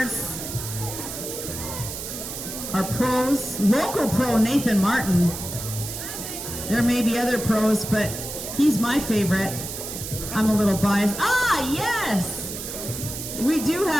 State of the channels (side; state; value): right; noise; hiss, 7 dB below the sound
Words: are pros. Local pro Nathan Martin. There may be other pros, but he's my favorite. I'm a little biased. Ah, yes! We do